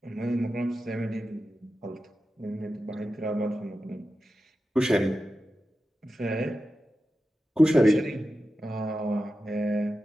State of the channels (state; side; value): normal; both; correlation 0.92